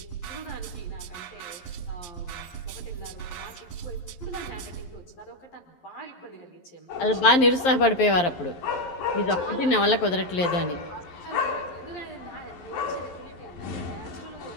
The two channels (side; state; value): right; late; 11 ms